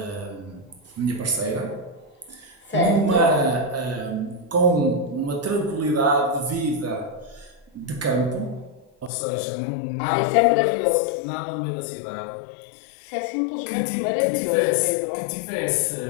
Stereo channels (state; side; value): drops out; right; at 9.1 s